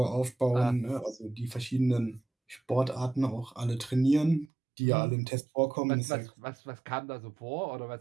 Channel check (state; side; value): drops out; left; at 4.5 s